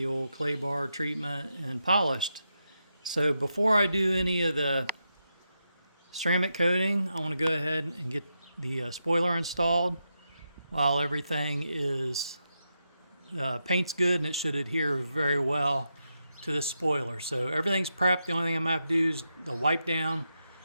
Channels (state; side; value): inverted; both; correlation -0.86